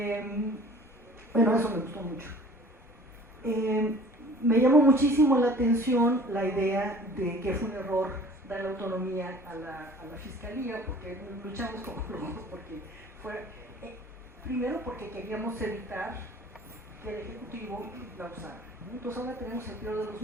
Bueno, eso me gustó mucho. Me llamó muchísimo la atención la idea de que fue un error dar la autonomía a la fiscalía, porque luchamos como locos, porque primero porque queríamos evitar que el Ejecutivo la usara, ¿no? Entonces ahora tenemos el peor de los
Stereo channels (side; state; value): both; normal; correlation 0.48